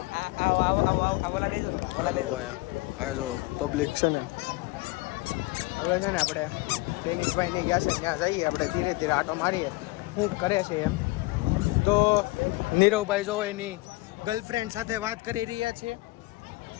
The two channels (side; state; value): right; quieter; 22.1 dB